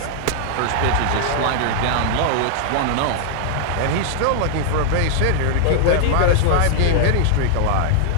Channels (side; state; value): both; different; correlation -0.01